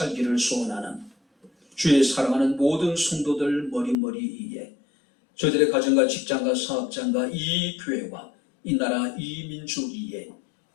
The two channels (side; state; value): right; drops out; at 4.0 s